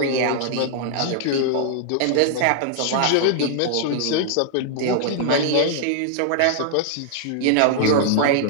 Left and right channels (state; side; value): different; both; correlation -0.01